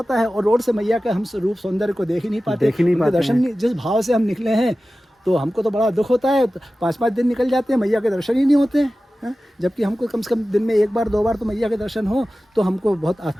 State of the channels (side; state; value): both; normal; correlation 0.95